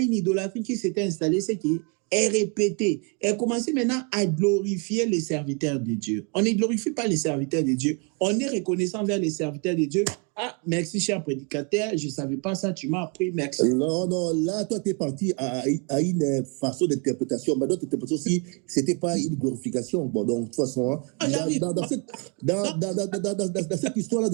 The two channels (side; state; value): left; quieter; 33.5 dB